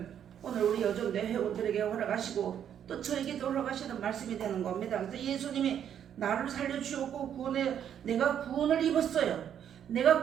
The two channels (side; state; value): left; quieter; 9.3 dB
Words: 오늘 우리 여전대 회원들에게 허락하시고 또 저에게도 허락하시는 말씀이 되는 겁니다. 그래서 예수님이 나를 살려주셨고 내가 구원을 입었어요. 내가